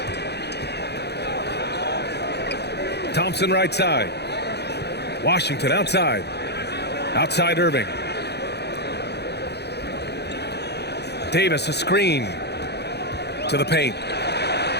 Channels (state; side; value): late; right; 0.48 ms